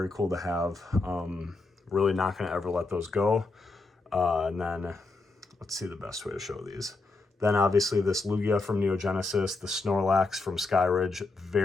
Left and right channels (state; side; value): quieter; right; 3.5 dB